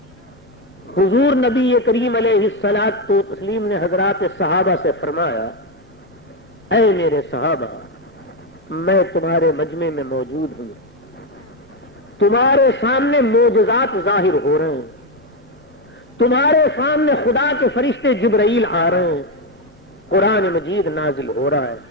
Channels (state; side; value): normal; both; correlation 0.07